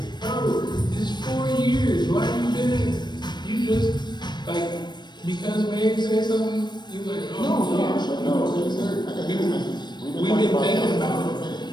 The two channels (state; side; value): late; right; 0.21 ms